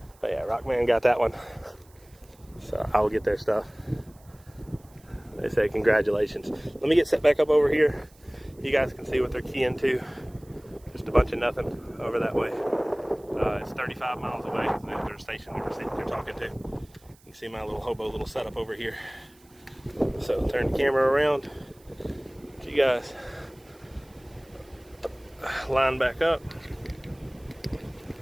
But yeah, Rockman got that one. So I will get their stuff. They say congratulations. Let me get set back up over here. You guys can see what they're keying to. Just a bunch of nothing over that way. It's 35 miles away. There's a station they're talking to. You can see my little setup over here. So turn the camera around. Get you guys line back up.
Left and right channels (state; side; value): noise; right; hiss, 29 dB below the sound